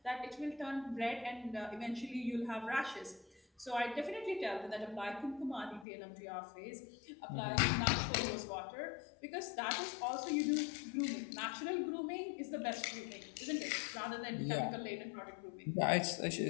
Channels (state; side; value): drops out; right; at 5.9 s